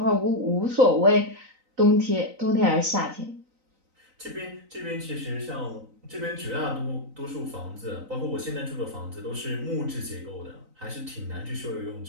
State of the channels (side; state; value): left; late; 3.9 ms